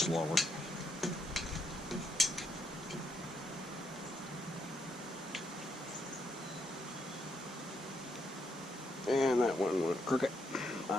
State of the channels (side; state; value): both; normal; correlation 0.76